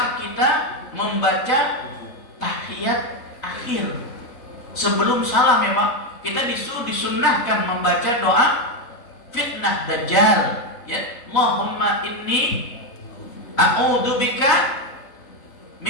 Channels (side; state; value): right; late; 4.0 ms